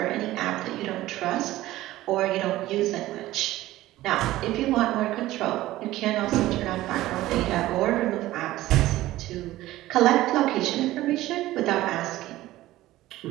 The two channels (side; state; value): left; quieter; 16.1 dB